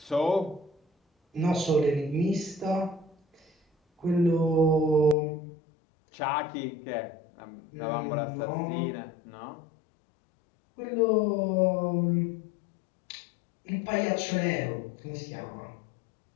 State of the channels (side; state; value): right; drops out; at 5.2 s